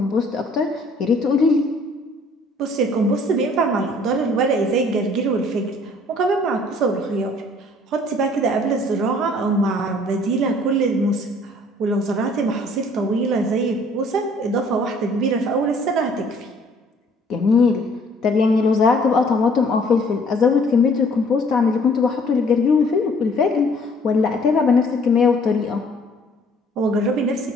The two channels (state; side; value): normal; both; correlation 0.58